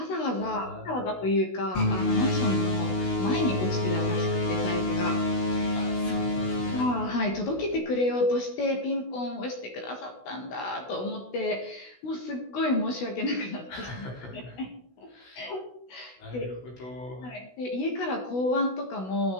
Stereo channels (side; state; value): right; late; 16 ms